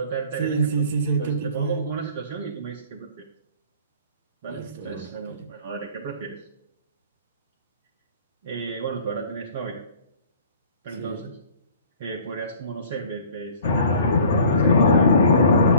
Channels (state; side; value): inverted; both; correlation -0.49